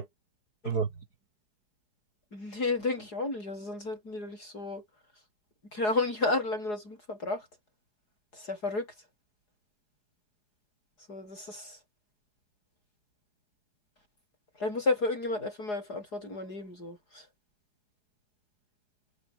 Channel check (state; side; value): late; right; 4.8 ms